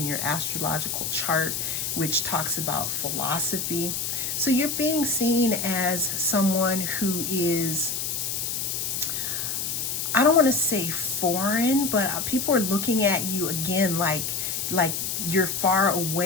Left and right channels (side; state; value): left; noise; hiss, 2 dB below the sound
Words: your astrological chart, which talks about philosophy. So you're being seen as someone who is, I don't want to say foreign, but people are looking at you again like you're far